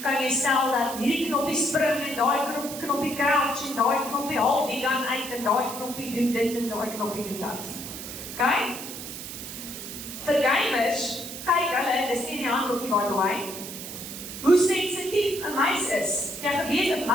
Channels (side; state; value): right; noise; hiss, 9 dB below the sound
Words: kan jy stel dat hierdie knoppie spring en daai knoppie crouch en daai knoppie haal die gun uit en daai knoppie doen dit en daai knoppie doen dat. Okay? Vir gamers, kyk hulle, dis nie in die handboekie by the way, hoe sensitief 'n muis is. Jy geweet 'n